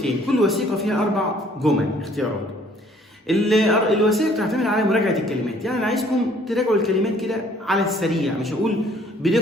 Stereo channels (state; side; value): normal; both; correlation 0.59